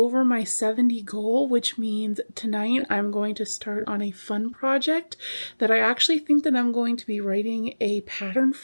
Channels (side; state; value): both; inverted; correlation -1.00